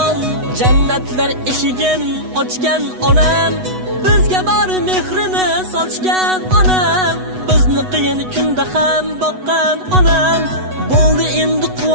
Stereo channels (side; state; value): left; late; 8.1 ms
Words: Jannatlar eshigin ochgan onam, bizga bor mehrini sochgan onam, bizni qiyin kunda ham boqqan onam. Bo'ldi endi